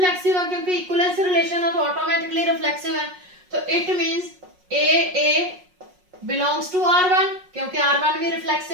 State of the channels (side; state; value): left; late; 5.5 ms